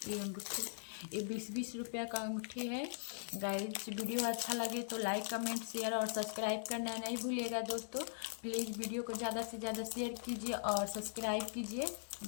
ये अंगूठी। ये 20-20 रुपया का अंगूठी है गाइस। वीडियो अच्छा लगे तो लाइक कमेंट शेयर और सब्सक्राइब करना नहीं भूलिएगा दोस्तों। प्लीज़ वीडियो को ज़्यादा से ज़्यादा शेयर कीजिए और सब्सक्राइब कीजिए।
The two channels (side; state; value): right; silent; digital silence